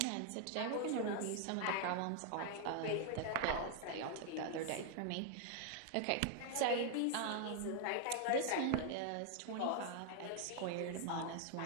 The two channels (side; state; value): both; different; correlation 0.00